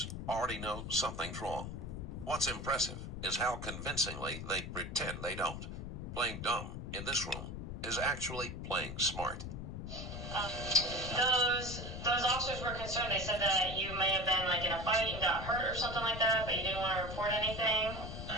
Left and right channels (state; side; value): noise; left; rumble, 7 dB below the sound